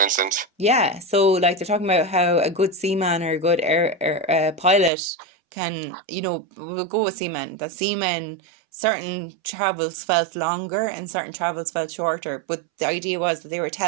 instance. yeah, so like they're talking about how a good seaman or a good air pilot can, we'll go with seamen. That seamen, certain travels felt longer and certain travels felt shorter. But the idea was that they were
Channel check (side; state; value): left; drops out; at 4.9 s